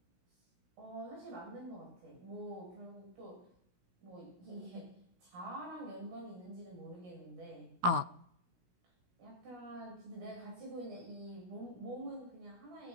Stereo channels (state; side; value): late; left; 17 ms